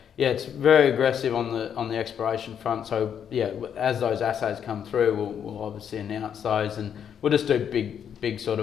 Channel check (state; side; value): quieter; right; 8.4 dB